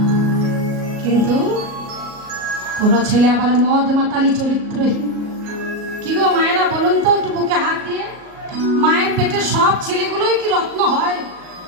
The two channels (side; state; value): left; late; 38 ms